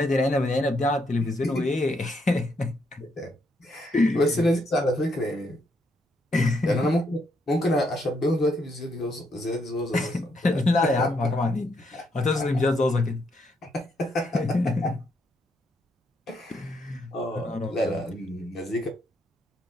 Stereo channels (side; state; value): both; normal; correlation 0.76